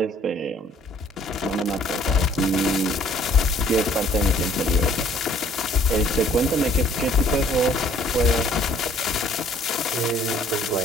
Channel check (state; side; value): normal; both; correlation 0.58